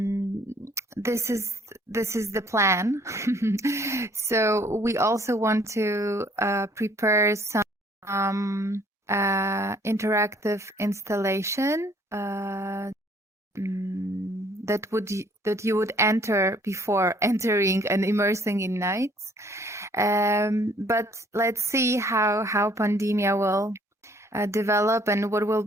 this is the plan. So we also want to prepare some interactive installation that you would enter before entering and immersing in nights. But let's see how pandemia will develop and what will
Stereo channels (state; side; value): normal; both; correlation 0.60